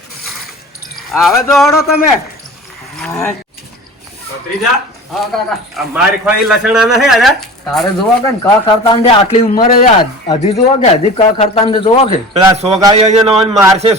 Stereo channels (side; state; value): both; normal; correlation 0.37